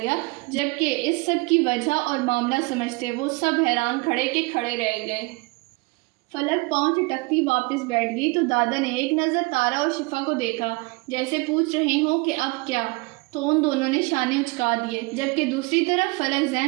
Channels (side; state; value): left; quieter; 26.1 dB